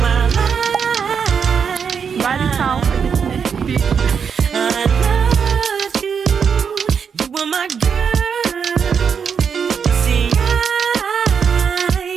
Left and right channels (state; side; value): quieter; left; 6.7 dB